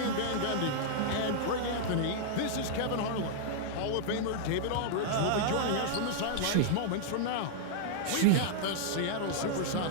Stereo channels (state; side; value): different; both; correlation -0.01